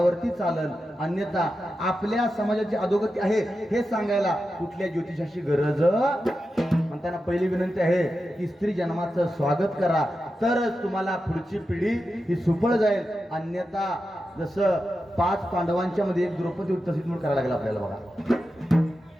चालल. अन्यथा आपल्या समाजाची अधोगती आहे हे सांगायला कुठल्या ज्योतिषाची गरज. म्हणताना पहिली विनंती आहे की स्त्री जन्माचं स्वागत करा, तरच तुम्हाला पुढची पिढी ही सुफळ जाईल. अन्यथा जसं 5 पांडवांच्या मध्ये एक द्रौपदी होती तशीच म्हणून करायला लागला आपल्याला बघा.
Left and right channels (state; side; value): normal; both; correlation 0.90